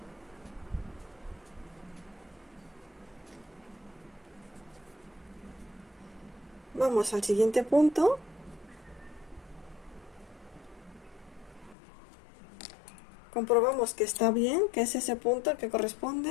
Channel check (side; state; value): right; drops out; at 11.8 s